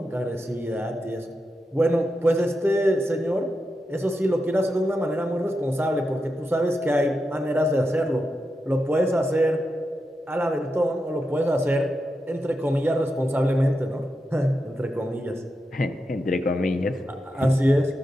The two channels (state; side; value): normal; both; correlation 0.87